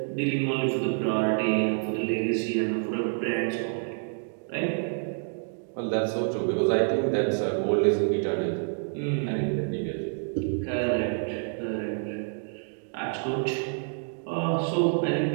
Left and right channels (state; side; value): silent; left; 59 dB below the other